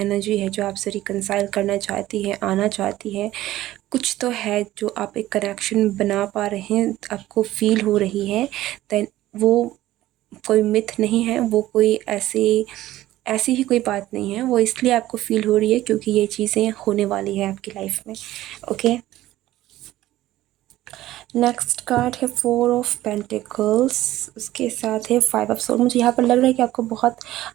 है जो आपसे रिकंसाइल करना चाहती है, आना चाहती है। कुछ तो है जो आप एक कनेक्शन बना पा रहे हैं, आपको फील हो रही है। देन वो कोई मिथ नहीं है, वो कोई ऐसी ही कोई बात नहीं है, वो इसलिए आपको फील हो रही है क्योंकि ये चीज़ें होने वाली है आपकी लाइफ में। ओके, नेक्स्ट कार्ड है 4 ऑफ पेंटिकल्स, उसके साथ है 5 ऑफ सोर्ड। मुझे यहाँ पर लग रहा है कि आपको बहुत,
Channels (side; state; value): left; quieter; 15.1 dB